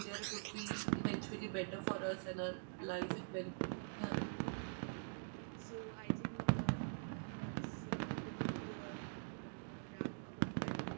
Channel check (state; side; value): silent; left; digital silence